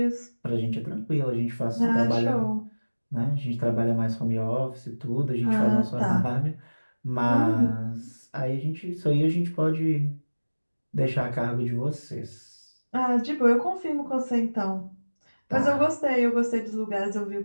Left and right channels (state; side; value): inverted; both; correlation -1.00